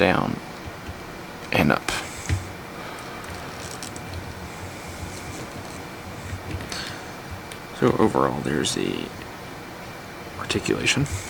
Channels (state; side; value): identical; both; correlation 1.00